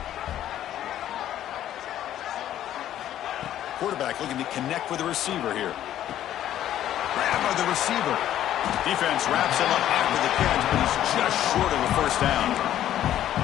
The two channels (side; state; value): right; quieter; 11.9 dB